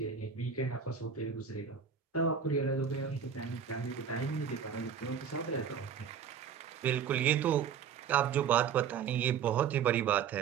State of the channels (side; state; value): left; quieter; 7.3 dB